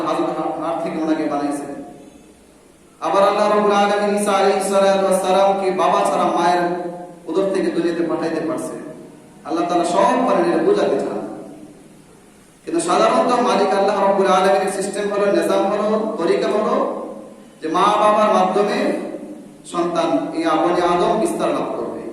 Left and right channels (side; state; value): both; identical; correlation 1.00